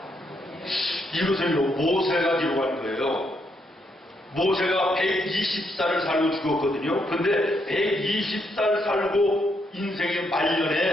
이것은요, 모세가 기록한 거예요. 모세가 120살을 살고 죽었거든요. 근데 120살 살고 인생의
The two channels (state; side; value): normal; both; correlation 0.77